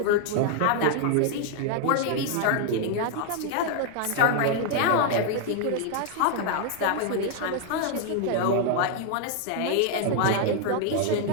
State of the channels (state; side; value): different; both; correlation 0.00